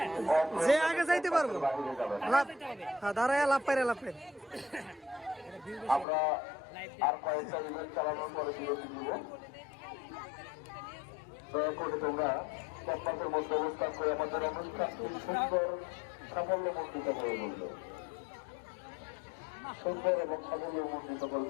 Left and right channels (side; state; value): right; drops out; at 6.1 s